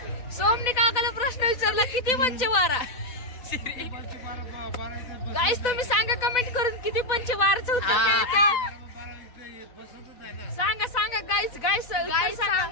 सोमनी काकाला प्रश्न विचारला किती पंच 12? गाईस तुम्ही सांगा कमेंट करून किती पंच 12चं उत्तर काय येतं? सांगा गाईस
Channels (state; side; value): late; right; 4.0 ms